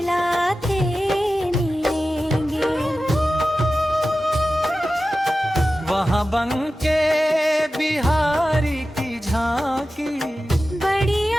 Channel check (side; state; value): both; normal; correlation 0.94